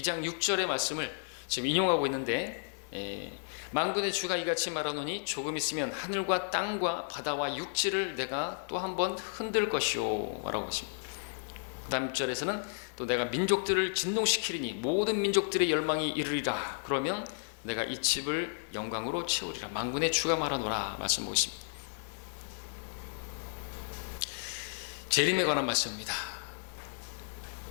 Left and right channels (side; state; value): right; silent; 56 dB below the other